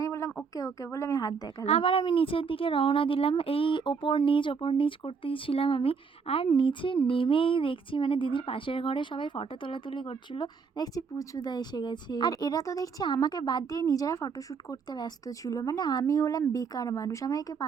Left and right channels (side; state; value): left; quieter; 5.5 dB